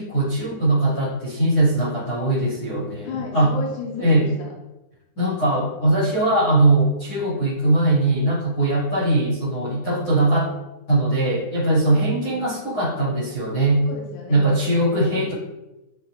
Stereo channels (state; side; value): late; right; 9.8 ms